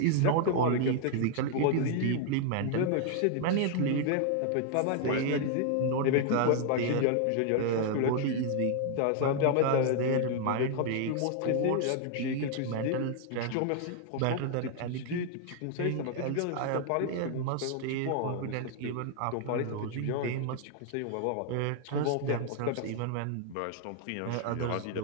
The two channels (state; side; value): different; both; correlation 0.00